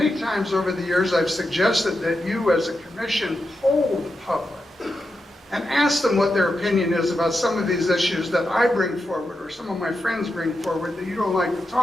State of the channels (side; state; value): both; normal; correlation 0.88